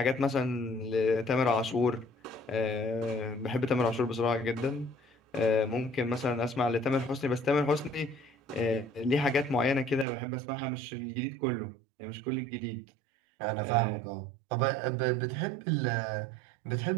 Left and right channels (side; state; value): left; drops out; at 10.1 s